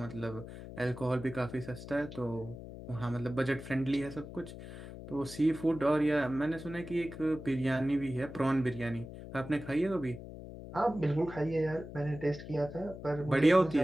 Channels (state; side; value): noise; left; hum, 12 dB below the sound